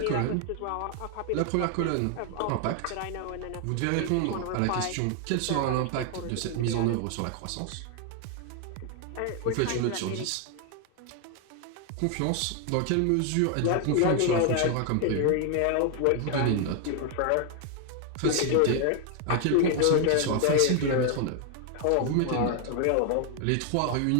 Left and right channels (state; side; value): different; both; correlation 0.00